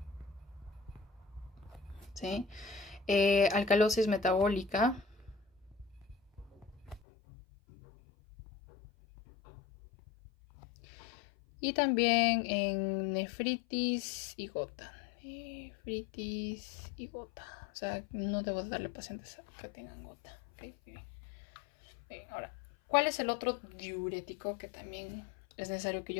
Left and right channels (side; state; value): right; drops out; at 7.0 s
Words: ¿sí? Alcalosis metabólica, y también en nefritis y gota. Nefritis y gota. O sea, no debo darle pacientes que tengan gota. ¿Okay? Bien. Ahora, ¿cuál es el otro diurético que también es necesario que